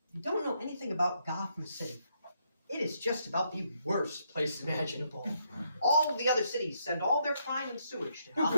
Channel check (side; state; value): both; inverted; correlation -0.76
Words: If you don't know anything about Gotham City, it is just about the worst place imaginable. All of the other cities send all their crime and sewage to